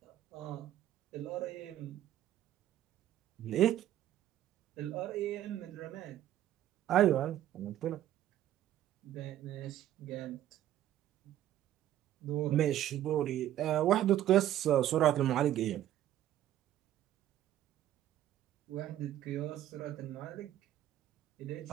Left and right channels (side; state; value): left; quieter; 12.5 dB